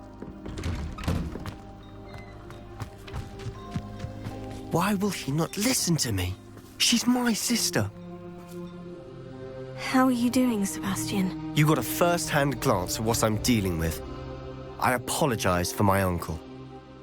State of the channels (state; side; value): identical; both; correlation 1.00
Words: Why will she not listen to me? She's my sister. How are you doing, Sebastian? You got a first-hand glance at what I'm dealing with. I apologize for my uncle.